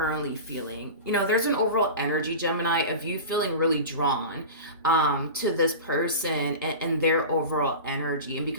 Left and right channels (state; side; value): inverted; both; correlation -0.30